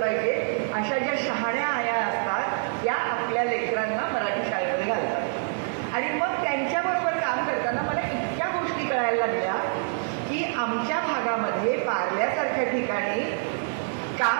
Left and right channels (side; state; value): left; silent; digital silence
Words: पाहिजे, अशा ज्या शहाण्या आया असतात त्या आपल्या लेकरांना मराठी शाळेमध्ये घालतात. आणि मग त्यांच्याबरोबर काम करताना मला इतक्या गोष्टी कळायला लागल्या की आमच्या भागामध्ये पार्ल्यासारख्या ठिकाणी